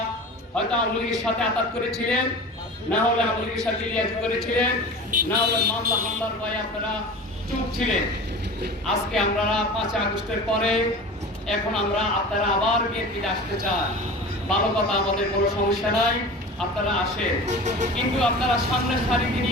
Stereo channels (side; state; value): both; normal; correlation 0.35